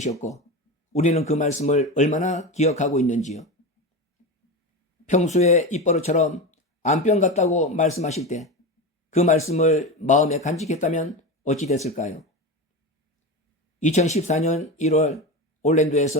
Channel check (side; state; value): both; normal; correlation 0.22